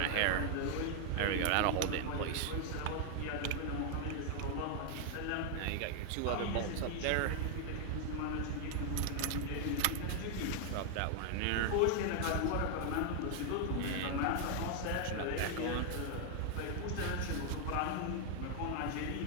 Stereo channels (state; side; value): different; both; correlation 0.00